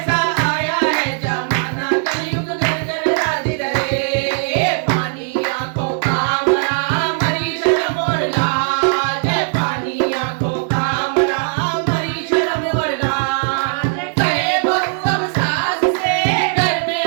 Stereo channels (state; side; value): silent; left; 59 dB below the other